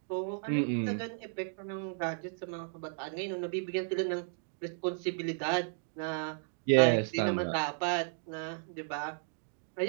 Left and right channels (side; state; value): left; silent; digital silence